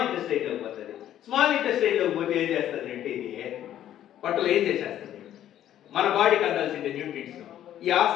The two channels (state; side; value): quieter; right; 11.6 dB